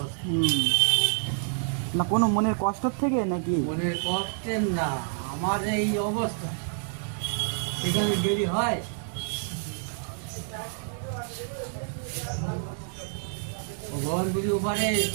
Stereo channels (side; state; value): left; silent; digital silence